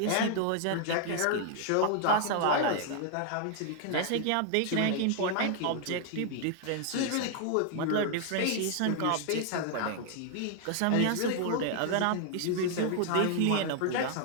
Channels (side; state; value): both; different; correlation 0.00